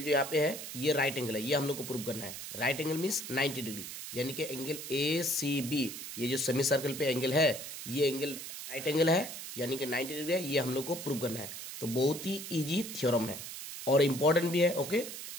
यहाँ पे है ये राइट एंगल है। ये हम लोग को प्रूव करना है। राइट एंगल मीन्स 90 डिग्री, यानी कि एंगल ए सी बी, ये जो सेमी सर्कल पे एंगल है ये एंगल राइट एंगल है, यानी कि 90 डिग्री है। ये हम लोग को प्रूव करना है। तो बहुत ही ईजी थ्योरम है और इम्पोर्टेंट भी है। ओके,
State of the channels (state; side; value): noise; right; hiss, 9 dB below the sound